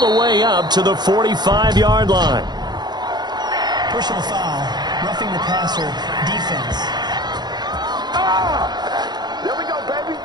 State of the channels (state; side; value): late; left; 0.20 ms